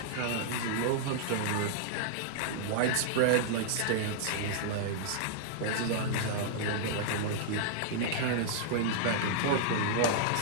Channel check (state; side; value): different; both; correlation -0.01